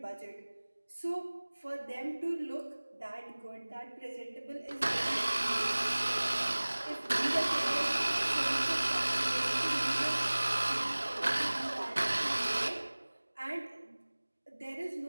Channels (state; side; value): inverted; both; correlation -1.00